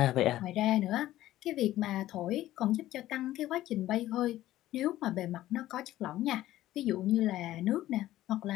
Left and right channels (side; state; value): right; quieter; 14.6 dB